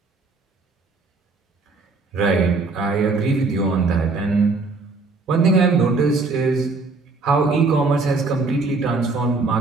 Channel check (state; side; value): quieter; left; 3.8 dB